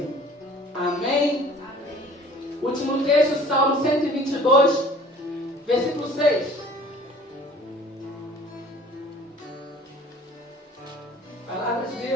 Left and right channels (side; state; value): both; normal; correlation 0.49